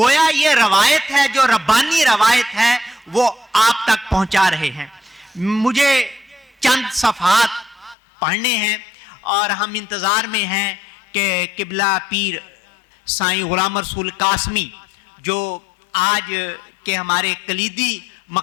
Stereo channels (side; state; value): right; drops out; at 8.0 s